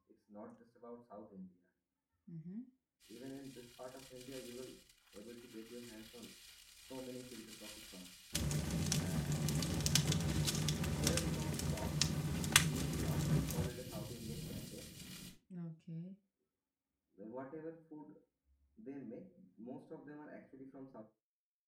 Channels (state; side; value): identical; both; correlation 1.00